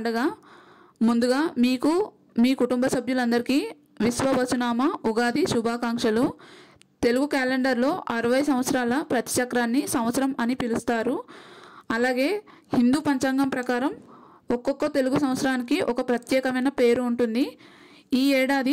ముందుగా మీకు మీ కుటుంబ సభ్యులందరికీ విశ్వవసునామ ఉగాది శుభాకాంక్షలు. తెలుగు క్యాలెండర్లో 60 సంవత్సరాల ప్రతిచక్రాన్ని సంవత్సరం అని పిలుస్తారు. అలాగే హిందూ పంచాంగం ప్రకారం ఒక్కొక్క తెలుగు సంవత్సరానికి ఒక ప్రత్యేకమైన పేరు ఉంటుంది. ఈ ఏడాది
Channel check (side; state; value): both; identical; correlation 1.00